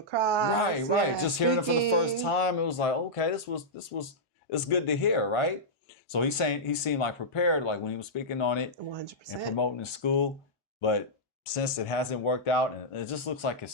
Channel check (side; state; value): both; normal; correlation -0.10